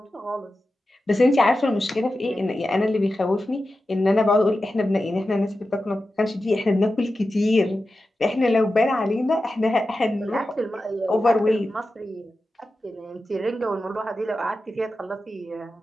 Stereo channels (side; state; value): both; normal; correlation 0.92